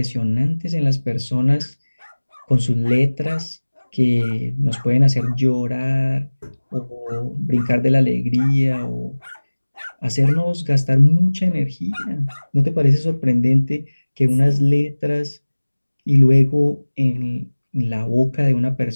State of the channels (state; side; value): inverted; both; correlation -1.00